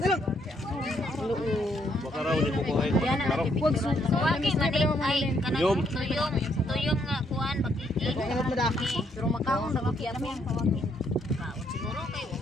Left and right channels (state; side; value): normal; both; correlation 0.72